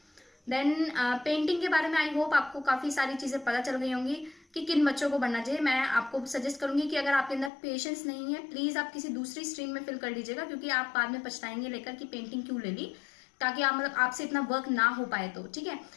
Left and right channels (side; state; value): right; drops out; at 7.5 s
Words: देन पेंटिंग के बारे में आई होप आपको काफी सारी चीजें पता चल गई होंगी कि किन बच्चों को बनना चाहिए। मैं आपको सजेस्ट करूंगी कि अगर आपके अंदर पेशेंस नहीं है, प्लीज आप किसी दूसरी स्ट्रीम में फिल कर लीजिएगा, क्योंकि आप बाद में पछताएंगे लेकर कि पेंटिंग क्यों ले ली, ताकि आप मतलब आपसे इतना वर्क ना हो पाए तो। ठीक है,